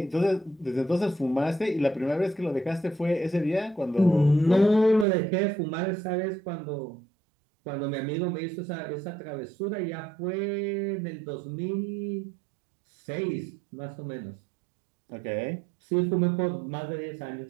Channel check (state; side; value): drops out; left; at 5.1 s